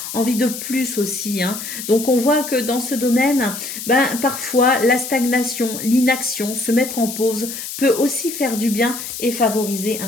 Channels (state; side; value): noise; left; hiss, 8 dB below the sound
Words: envie de plus aussi. Donc on voit que dans ce domaine, parfois la stagnation, l'inaction, se mettre en pause peut aussi faire du bien et favoriser